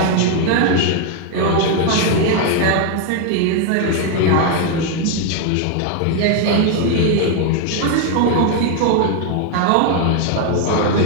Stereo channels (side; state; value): both; different; correlation 0.01